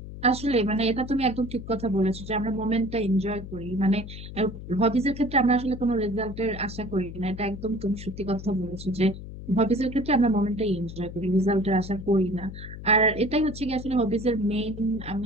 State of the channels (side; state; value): left; noise; hum, 11 dB below the sound